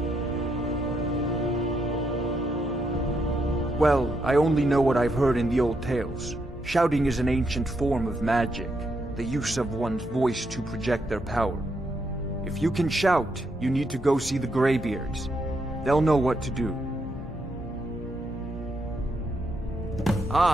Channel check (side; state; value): both; normal; correlation 0.79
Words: Well, I only know what I've heard in the old tales. Shouting is an ancient form of magic, the use of one's voice to project their power. If you can shout, you need to go see the Greybeards. They'll know what to do.